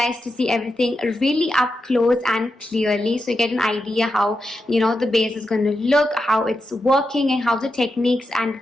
to see everything really up close and clearly, so you get an idea how, you know, the base is going to look, how it's working, and how the techniques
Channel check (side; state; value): both; normal; correlation 0.88